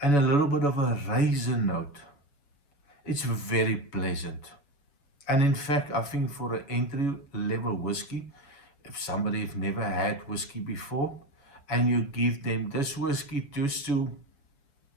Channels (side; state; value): right; late; 7.1 ms